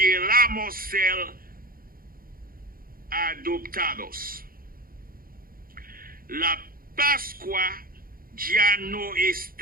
ser adoptados. La Pascua ya no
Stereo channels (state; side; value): late; left; 0.42 ms